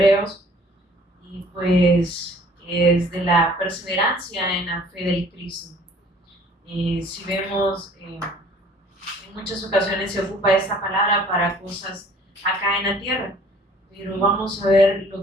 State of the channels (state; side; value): normal; both; correlation 0.54